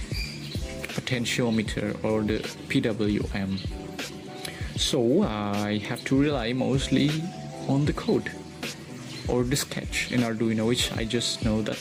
potentiometer or the PWM. So I have to rely mostly on the code or the sketch in Arduino, which I just know that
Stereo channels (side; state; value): both; identical; correlation 1.00